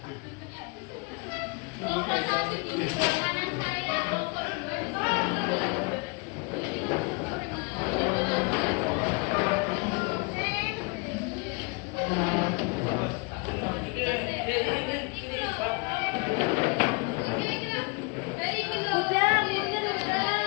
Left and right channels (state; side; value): quieter; right; 31.3 dB